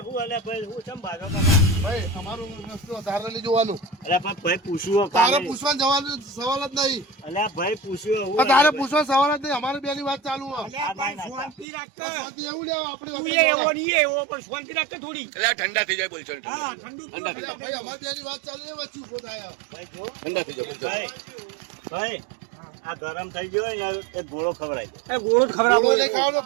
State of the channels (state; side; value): drops out; left; at 11.7 s